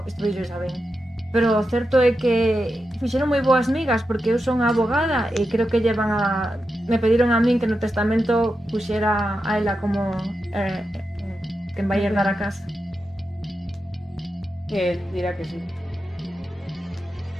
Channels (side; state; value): both; normal; correlation 0.89